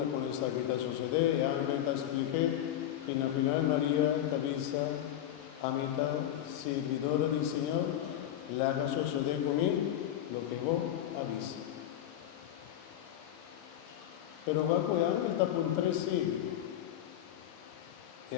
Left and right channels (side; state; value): right; quieter; 11.5 dB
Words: esta que te sucede, ángel te explique, y al final María te avisa, a mitad servidora del Señor, la haga suceder conmigo lo que vos avisa. Pero va con ángel está por 3 siglos. El